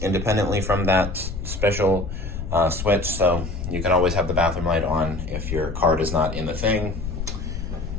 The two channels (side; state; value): left; noise; rumble, 6 dB below the sound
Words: from that special switch, so you can always have the bathroom light on if your card is not in the thing.